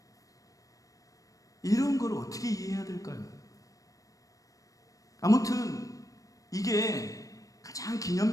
이런 걸 어떻게 이해해야 될까요? 아무튼 이게 가장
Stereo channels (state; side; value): late; right; 0.16 ms